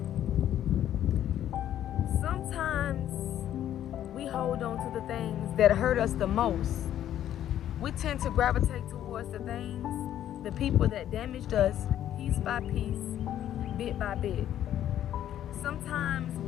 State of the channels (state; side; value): quieter; right; 11.3 dB